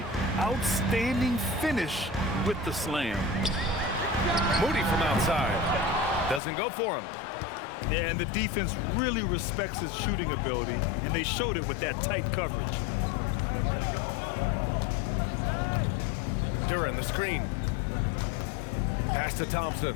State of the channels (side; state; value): right; drops out; at 6.4 s